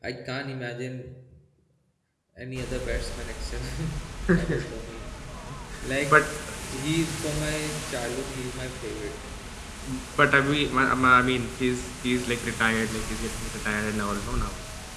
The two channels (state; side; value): identical; both; correlation 1.00